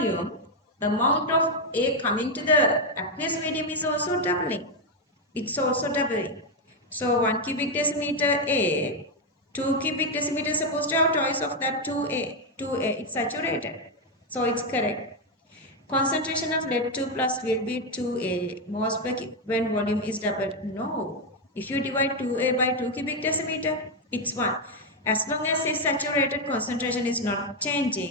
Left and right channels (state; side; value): normal; both; correlation 0.05